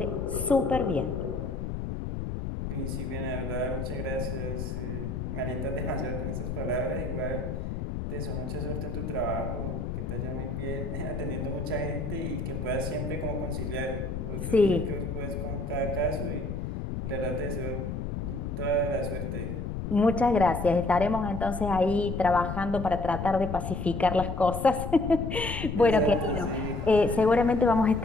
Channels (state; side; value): noise; left; rumble, 4 dB below the sound